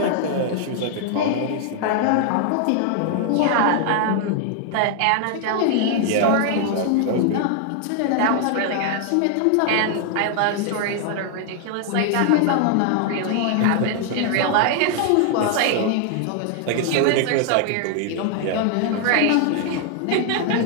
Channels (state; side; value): different; both; correlation 0.00